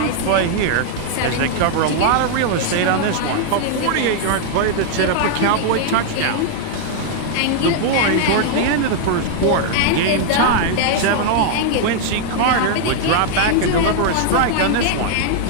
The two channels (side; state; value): both; different; correlation -0.01